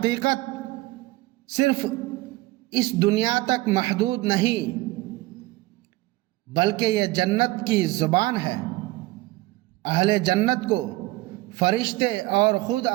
صرف اس دنیا تک محدود نہیں، بلکہ یہ جنت کی زبان ہے۔ اہل جنت کو فرشتے اور خود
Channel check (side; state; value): left; quieter; 19.4 dB